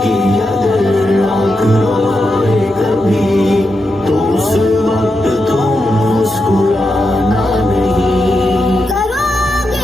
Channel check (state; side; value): normal; both; correlation 0.86